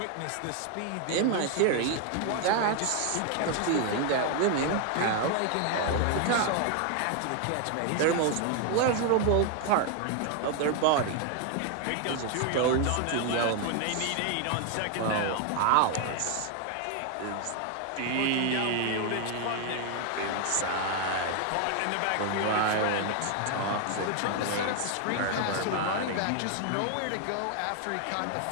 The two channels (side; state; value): both; different; correlation 0.01